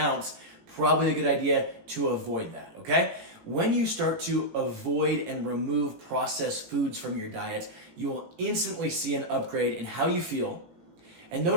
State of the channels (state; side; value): late; left; 18 ms